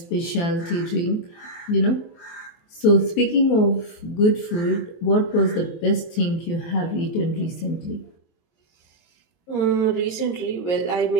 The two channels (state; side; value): late; right; 23 ms